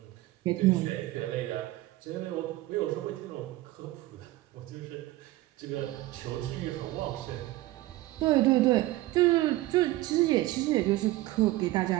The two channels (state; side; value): quieter; left; 17.5 dB